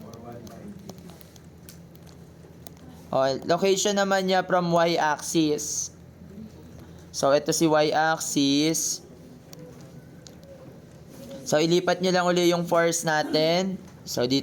Location naman niya from Y-axis. So, ito si Y-axis. So, ilipat nyo lang uli yung force natin. So,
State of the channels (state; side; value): identical; both; correlation 1.00